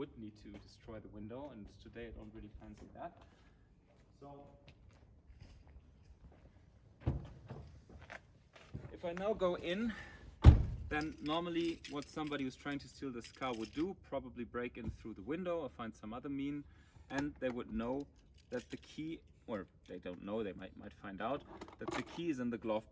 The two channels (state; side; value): identical; both; correlation 1.00